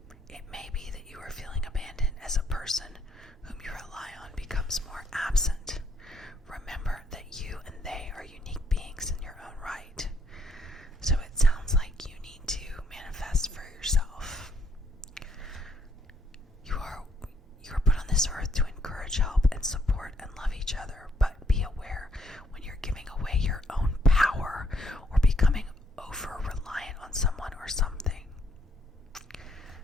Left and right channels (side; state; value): both; normal; correlation 0.71